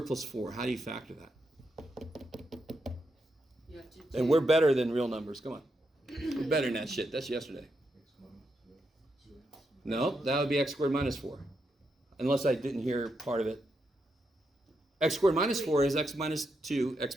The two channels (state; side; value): normal; both; correlation 0.83